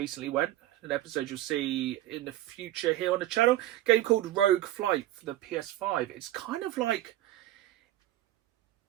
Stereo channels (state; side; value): quieter; left; 14.4 dB